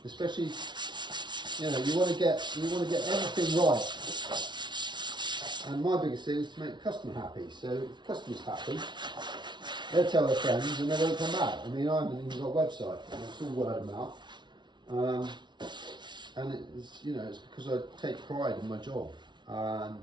especially, you know, you want to get everything right. And my biggest thing is to make the customer happy. So if the customer's happy, they'll tell their friends and they won't come back. I mean, I haven't even got a website. It's all word of mouth. And it's, you know, it's because I take pride in my job. And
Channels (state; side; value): late; left; 0.22 ms